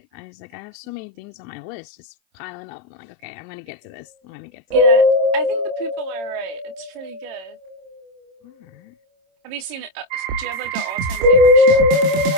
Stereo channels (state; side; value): late; left; 26 ms